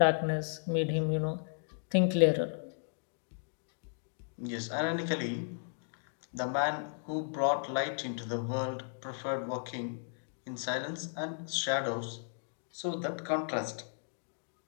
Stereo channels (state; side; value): silent; right; digital silence